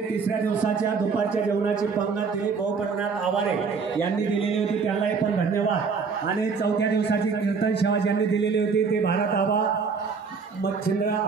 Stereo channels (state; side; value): quieter; left; 5.3 dB